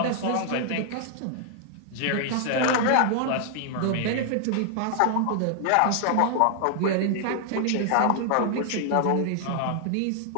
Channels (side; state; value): both; different; correlation 0.00